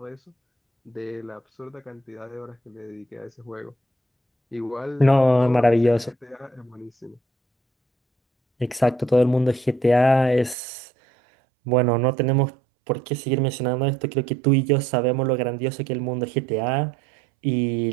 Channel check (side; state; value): left; drops out; at 10.6 s